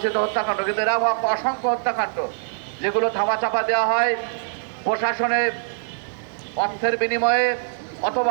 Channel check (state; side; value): silent; left; digital silence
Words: হত্যাকাণ্ড, কিন্তু এরা অসংখ্য হত্যাকাণ্ড যেগুলো ধামাচাপা দেওয়া হয় প্রশাসনে অর্থের বিনিময়ে